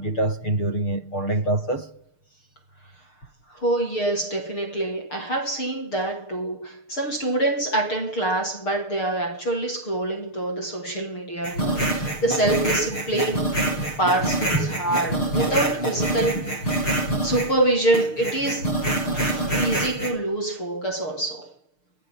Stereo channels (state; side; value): late; right; 6.6 ms